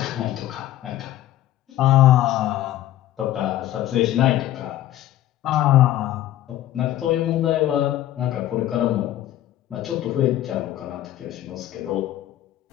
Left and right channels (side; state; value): right; quieter; 13.5 dB